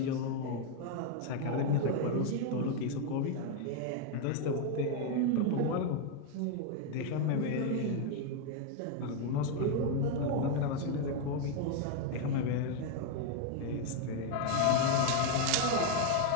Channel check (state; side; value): different; both; correlation 0.01